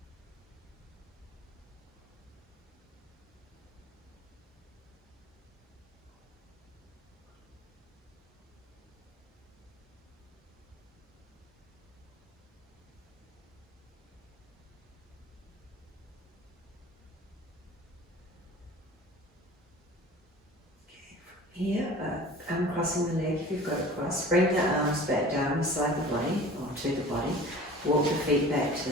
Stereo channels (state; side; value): normal; both; correlation 0.42